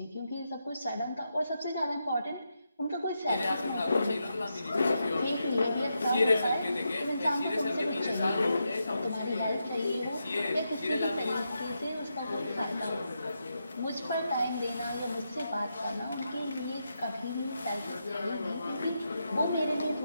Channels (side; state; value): both; inverted; correlation -0.85